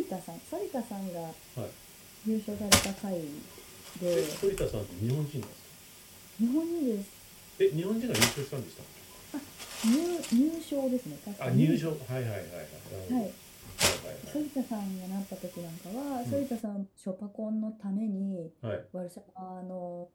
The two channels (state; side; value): identical; both; correlation 1.00